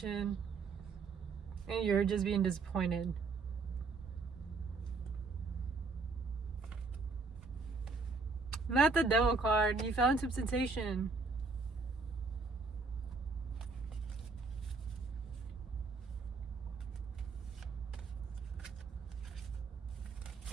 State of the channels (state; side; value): quieter; left; 4.3 dB